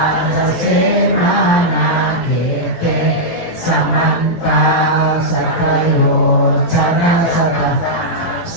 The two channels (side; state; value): right; late; 18 ms